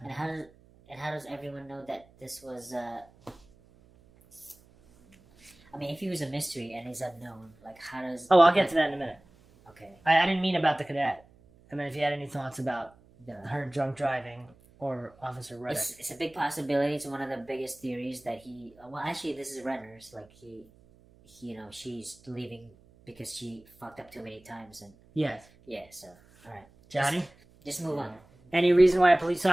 And how does everyone know that this was? I mean, if he was a mystery and he's unknown, like how does? Oh, I'll get to that in a minute. Okay. I didn't mean about the cadet. I mean, if you had any thoughts about her drunk driving or Officer Ruddock. It's a big possibility. It's one of the biggest theories that he. Well, actually, this is Renner's. Like she's leaving because she fucked up too many times, and Yes. yeah. So, all right, Johnny? just move on. Any reason why a police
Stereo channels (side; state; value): right; noise; hum, 28 dB below the sound